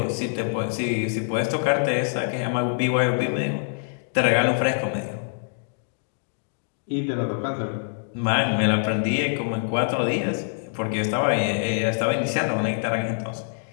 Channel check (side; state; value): right; silent; digital silence